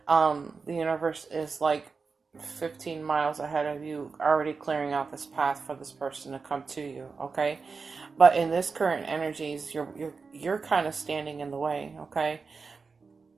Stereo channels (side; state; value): left; quieter; 4.7 dB